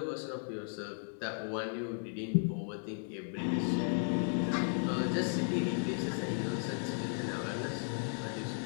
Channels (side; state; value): right; silent; 54 dB below the other